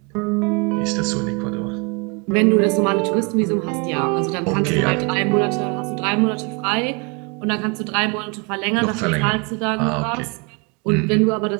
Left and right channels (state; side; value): quieter; left; 31.7 dB